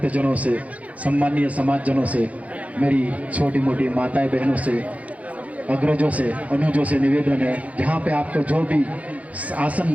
से, सम्मानीय समाजजनों से, मेरी छोटी मोटी माताएं बहनों से, अग्रजों से, अनुजों से निवेदन है, जहाँ पे आपको जो भी आसन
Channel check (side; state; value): left; late; 0.068 ms